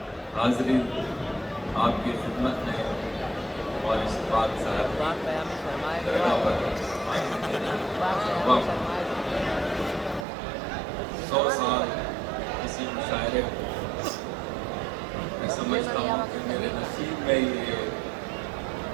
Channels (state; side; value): drops out; left; at 10.2 s